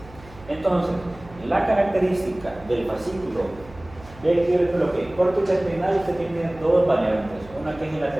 Entonces, la característica del fascículo de lo que córtex espinal, usted tiene dos variantes, una que es el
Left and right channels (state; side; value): noise; right; hum, 21 dB below the sound